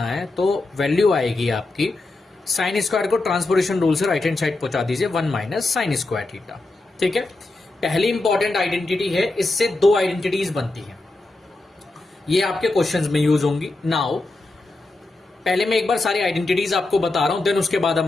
है तो वैल्यू आएगी आपकी साइन स्क्वायर को ट्रांसपोजिशन रूल से राइट हैंड साइड पहुंचा दीजिए 1 माइनस साइन स्क्वायर थीटा। ठीक है, पहली इंपॉर्टेंट आइडेंटिटी है, इससे दो आइडेंटिटीज बनती हैं। ये आपके क्वेश्चंस में यूज होंगी। नाउ पहले मैं एक बार सारी आइडेंटिटीज आपको बता रहा हूं, देन उसके बाद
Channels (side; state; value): right; quieter; 3.0 dB